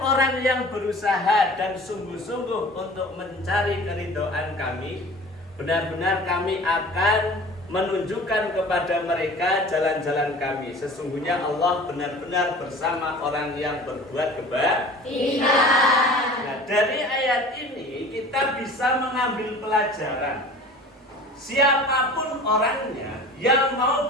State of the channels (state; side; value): normal; both; correlation 0.42